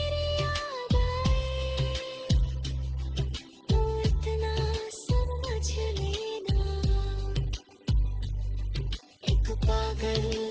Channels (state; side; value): identical; both; correlation 1.00